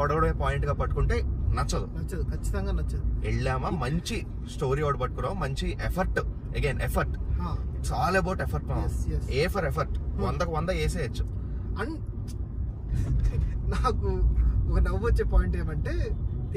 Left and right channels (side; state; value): both; identical; correlation 1.00